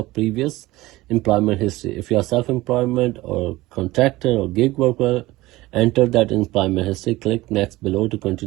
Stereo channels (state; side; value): quieter; left; 18.7 dB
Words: previous employment history. If you are self-employment or contractor or gig worker, enter that employment history. Click next below to